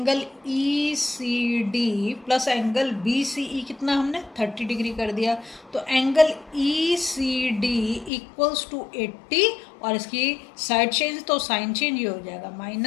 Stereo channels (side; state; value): right; drops out; at 8.1 s